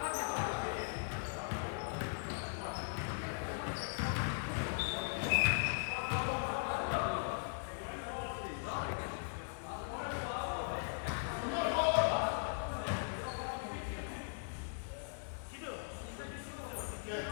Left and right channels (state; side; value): silent; right; digital silence